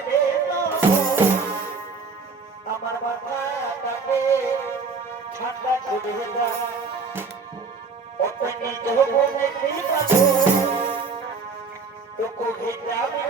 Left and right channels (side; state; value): left; quieter; 4.7 dB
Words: আমার মাথাটাকে ঠান্ডা করে দাও। অতই নিজ বলে কৃপা তো কবিতা